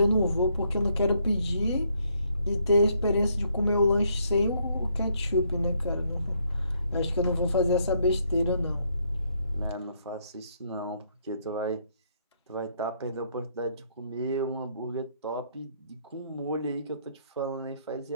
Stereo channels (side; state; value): both; inverted; correlation -0.71